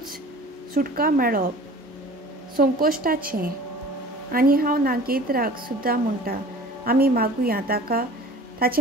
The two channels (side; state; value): both; normal; correlation 0.44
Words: सुटका मेळप संकोश्टाचें. आनी हांव नागेंद्राक सुद्दां म्हणटा आमी मागुया ताका